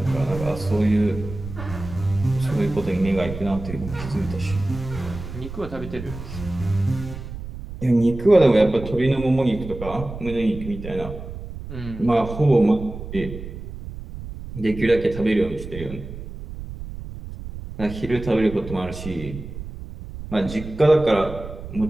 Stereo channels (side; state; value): right; noise; rumble, 11 dB below the sound